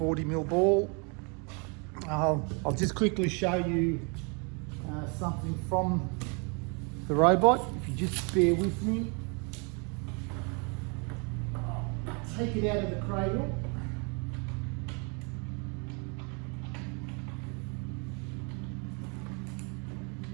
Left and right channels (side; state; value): left; quieter; 34.2 dB